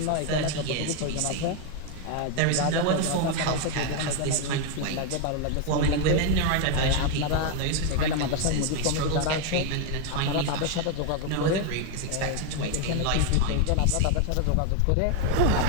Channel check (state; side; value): different; both; correlation 0.01